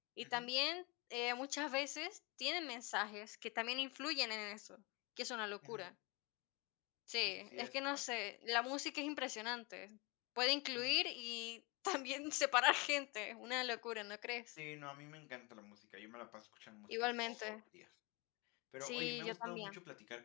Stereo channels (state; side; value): quieter; right; 27.8 dB